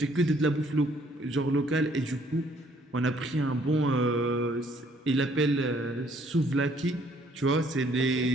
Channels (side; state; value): both; normal; correlation 0.63